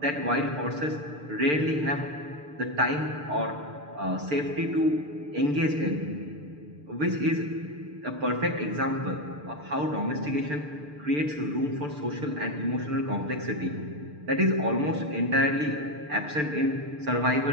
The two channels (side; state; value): left; late; 6.7 ms